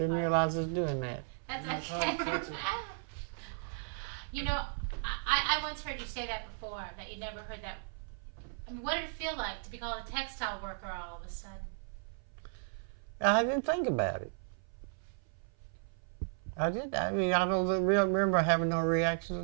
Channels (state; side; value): silent; left; 54 dB below the other